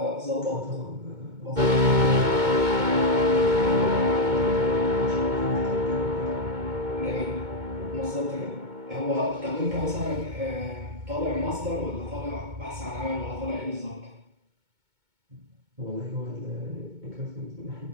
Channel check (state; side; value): late; left; 2.2 ms